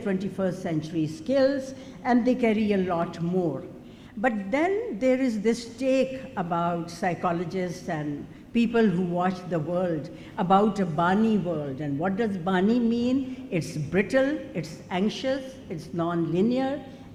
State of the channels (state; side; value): identical; both; correlation 1.00